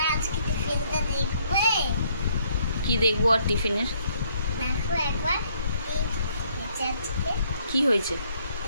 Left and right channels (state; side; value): inverted; both; correlation -0.68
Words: আজকে টিফিনটা দেখবে। কি দেখবো আর টিফিনের? দেখো একবার কি হয়েছে?